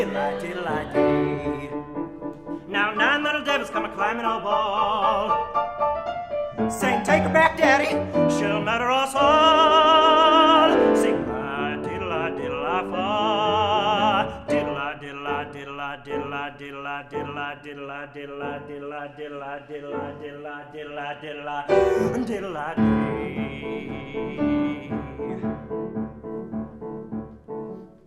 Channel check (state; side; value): identical; both; correlation 1.00